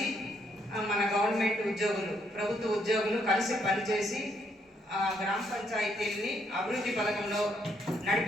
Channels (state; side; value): normal; both; correlation 0.73